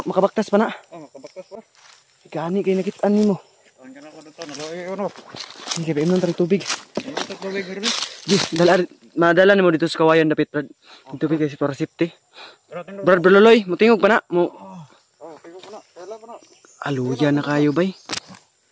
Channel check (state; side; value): identical; both; correlation 1.00